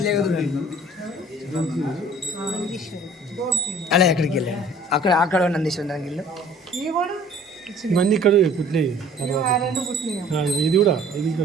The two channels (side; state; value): both; normal; correlation 0.52